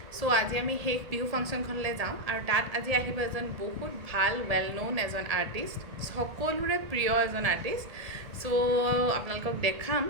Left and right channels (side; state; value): left; late; 1.7 ms